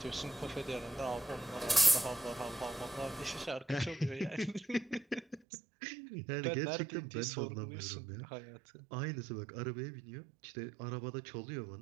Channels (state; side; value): drops out; left; at 5.4 s